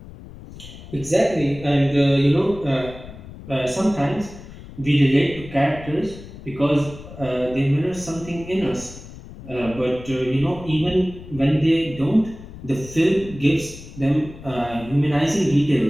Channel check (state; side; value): noise; left; rumble, 16 dB below the sound